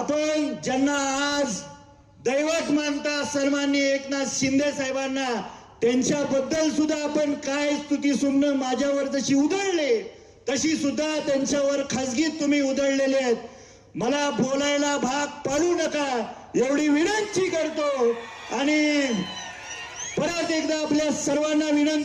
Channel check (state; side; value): identical; both; correlation 1.00